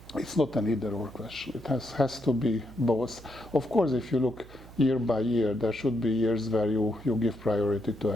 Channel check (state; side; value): noise; right; hum, 19 dB below the sound